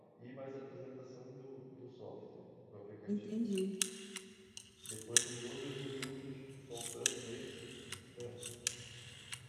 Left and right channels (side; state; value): both; identical; correlation 1.00